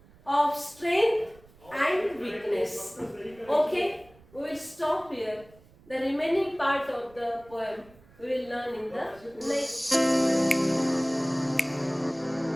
of strength and weakness. Okay, we will stop here. The remaining part of the poem we will learn in the next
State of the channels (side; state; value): right; noise; rumble, 26 dB below the sound